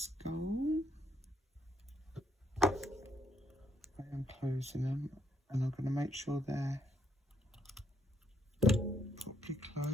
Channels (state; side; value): normal; both; correlation 0.72